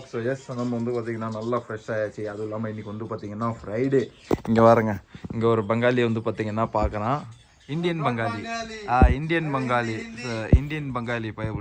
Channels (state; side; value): identical; both; correlation 1.00